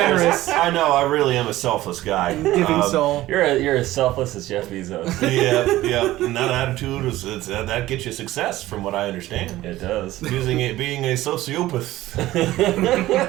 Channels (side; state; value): left; quieter; 16.1 dB